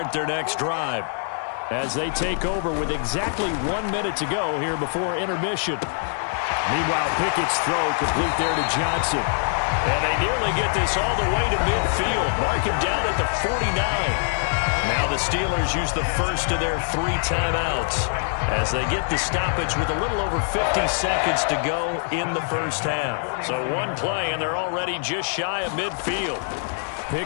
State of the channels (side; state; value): right; silent; digital silence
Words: their next drive, as they take over with exactly 1 minute to go here before intermission. Meanwhile, Pickett's throw complete there to Johnson. And they nearly get this all the way to midfield. Mark him down at the 49. Now the Steelers use the first of their 3 timeouts as they get the stoppage with a little over 50 seconds to go in the first half. So one play, and they're already just shy of midfield.